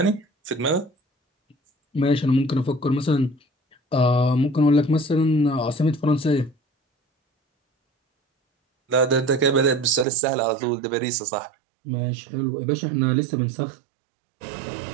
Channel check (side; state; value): left; drops out; at 10.1 s